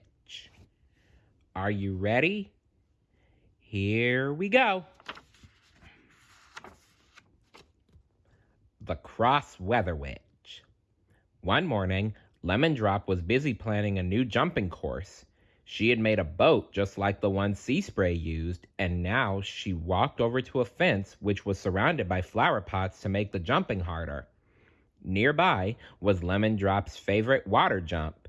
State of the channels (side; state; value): both; identical; correlation 1.00